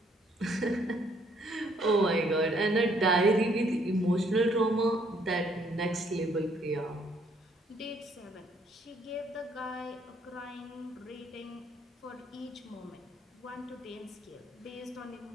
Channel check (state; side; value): normal; both; correlation 0.67